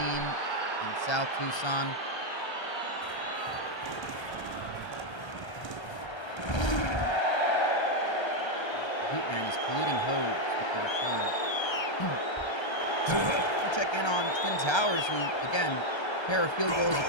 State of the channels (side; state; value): right; late; 1.3 ms